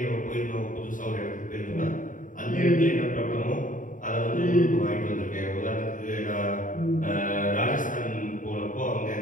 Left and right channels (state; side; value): late; right; 0.38 ms